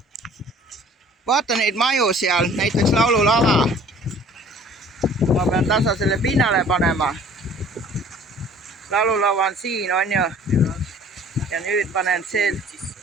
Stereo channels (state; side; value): normal; both; correlation 0.51